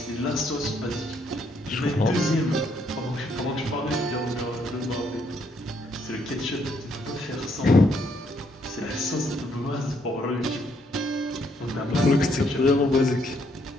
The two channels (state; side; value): normal; both; correlation 0.71